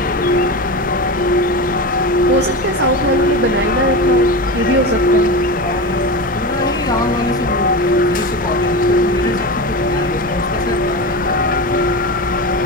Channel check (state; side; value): normal; both; correlation 0.23